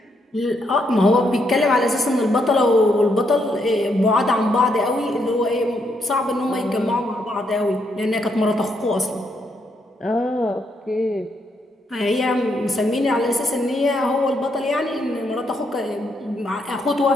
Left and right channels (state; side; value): normal; both; correlation 0.77